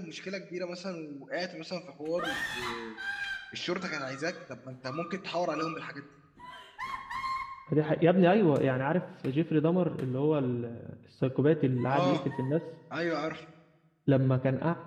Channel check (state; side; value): identical; both; correlation 1.00